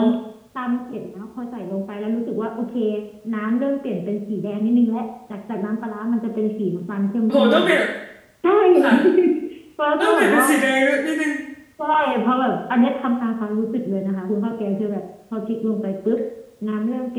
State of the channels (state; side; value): identical; both; correlation 1.00